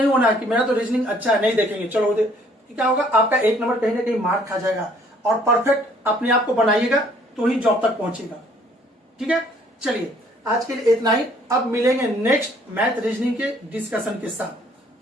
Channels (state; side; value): normal; both; correlation 0.61